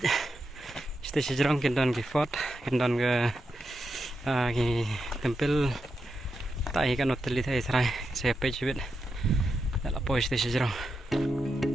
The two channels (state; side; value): normal; both; correlation 0.87